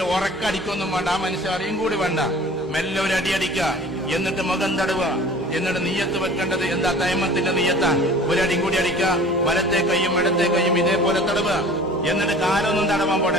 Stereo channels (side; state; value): right; noise; hum, 27 dB below the sound